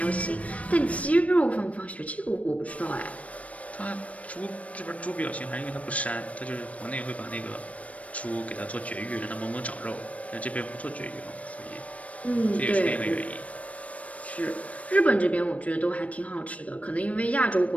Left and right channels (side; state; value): right; late; 0.066 ms